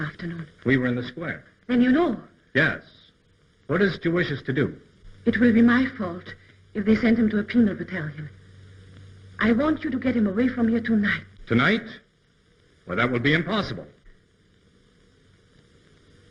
We were in the square. Then you know. Yes. What is it you wish us to do? It will be my fault if they send him to a penal battalion. I want you to get him away from here tonight. Tonight? Well, that will be impossible.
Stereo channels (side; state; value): both; identical; correlation 1.00